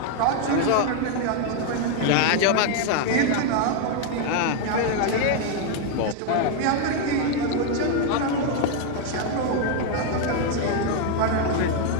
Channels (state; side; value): different; both; correlation 0.01